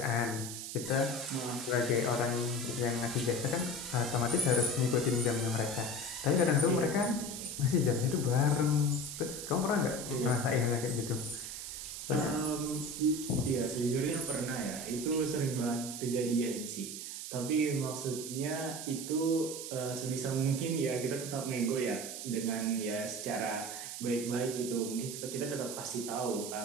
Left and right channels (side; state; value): right; noise; hiss, 7 dB below the sound